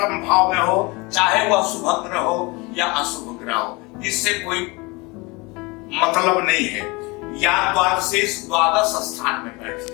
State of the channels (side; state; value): right; quieter; 25.8 dB